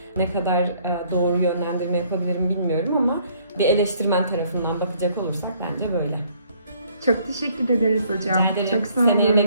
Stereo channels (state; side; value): inverted; both; correlation -0.63